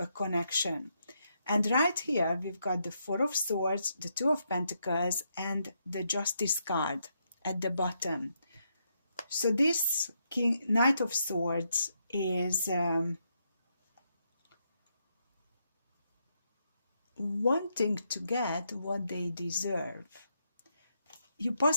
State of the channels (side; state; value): both; inverted; correlation -0.79